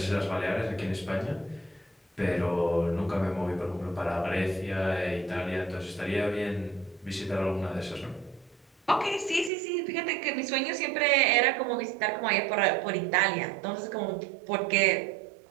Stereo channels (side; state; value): left; drops out; at 9.5 s